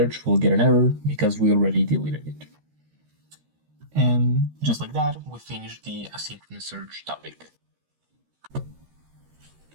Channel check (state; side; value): late; left; 13 ms